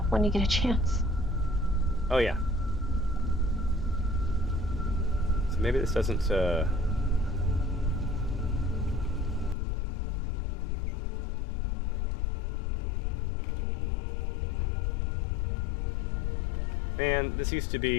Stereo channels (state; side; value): drops out; right; at 9.6 s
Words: when you get a chance? Oh, yeah. So maybe this doesn't, Man, this used to